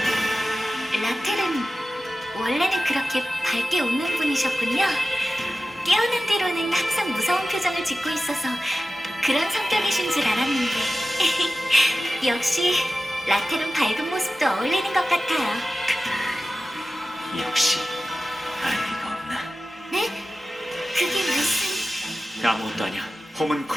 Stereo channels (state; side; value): normal; both; correlation 0.94